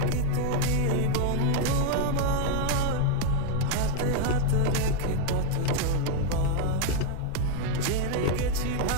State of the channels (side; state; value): both; different; correlation 0.01